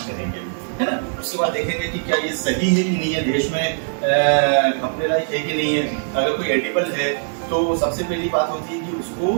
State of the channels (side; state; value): left; silent; 65 dB below the other